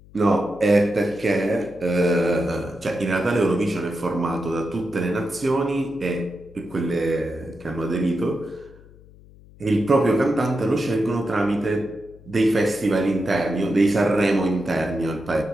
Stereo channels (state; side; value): noise; left; hum, 23 dB below the sound